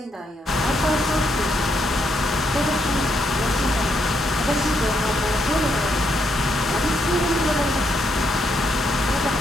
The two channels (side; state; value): both; normal; correlation 0.77